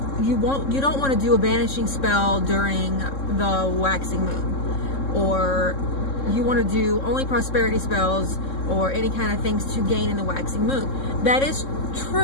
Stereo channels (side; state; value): right; late; 3.7 ms